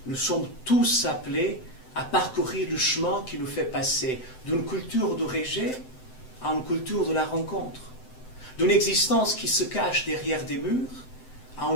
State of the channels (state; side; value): late; right; 7.8 ms